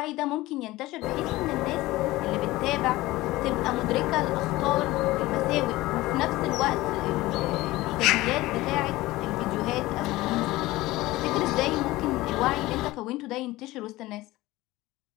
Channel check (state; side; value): quieter; right; 18.6 dB